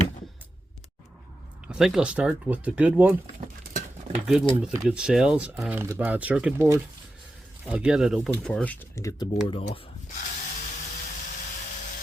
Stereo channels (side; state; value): both; normal; correlation 0.91